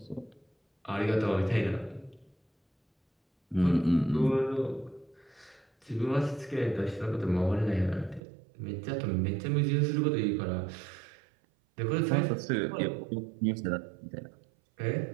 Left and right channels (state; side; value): drops out; left; at 8.2 s